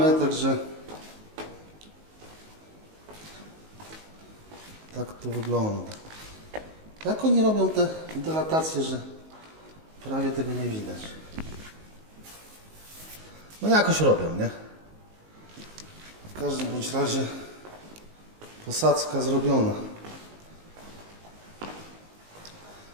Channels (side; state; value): left; late; 19 ms